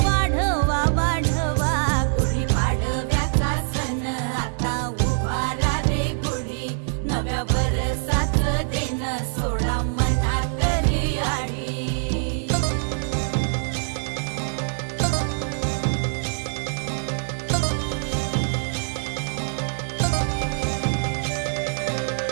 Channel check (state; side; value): silent; left; digital silence